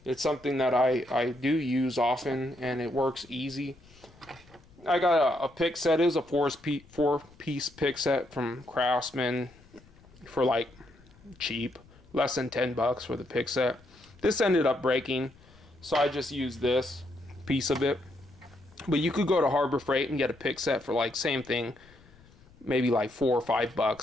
it's something that I do use often, and it works easy. I got a pick set. It was a four-piece pick set from Craftsman for like cheap, less than $10 for the pick set. This ended up breaking, so I just use this piece of it. But you could go to Harbor Freight and get a pick set for like same thing, maybe like $4 or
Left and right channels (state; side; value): noise; left; rumble, 26 dB below the sound